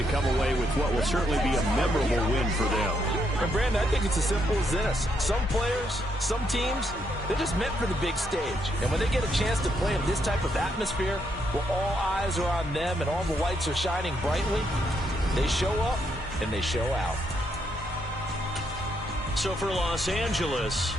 come away with what will certainly be a memorable win for them. And, Brandon, I think it's as simple as this. Some players, some teams, they're just meant for the big stage. And when they get a chance to play in this type of atmosphere, where all eyes are on them and all the lights are shining brightly, they show up and they show out. So for Los Angeles,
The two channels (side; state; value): both; normal; correlation 0.76